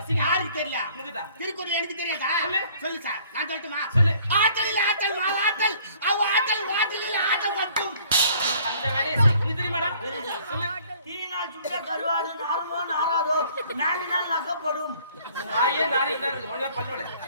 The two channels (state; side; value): inverted; both; correlation -0.57